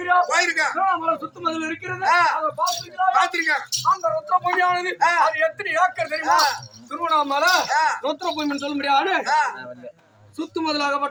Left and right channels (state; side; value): identical; both; correlation 1.00